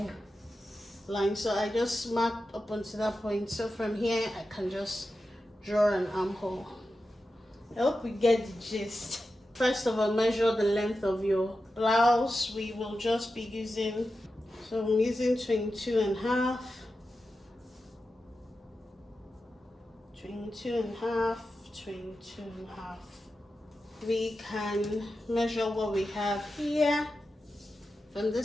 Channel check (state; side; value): normal; both; correlation 0.91